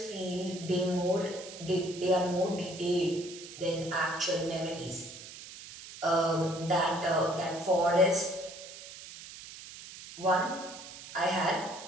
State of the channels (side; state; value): right; noise; hiss, 14 dB below the sound